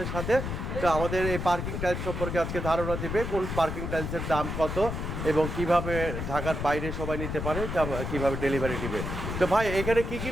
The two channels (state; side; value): noise; left; rumble, 4 dB below the sound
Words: সাথে। তো আমাদের এই পার্কিং টাইলস সম্পর্কে আজকে ধারণা দিবে, কোন পার্কিং টাইলসের দাম কত এবং কিভাবে ঢাকার বাইরে সবাই নিতে পারে, কিভাবে ডেলিভারি দিবে। তো ভাই, এখানে কি কি